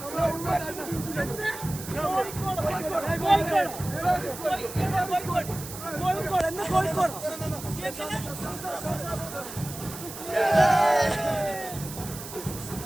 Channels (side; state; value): right; noise; hiss, 11 dB below the sound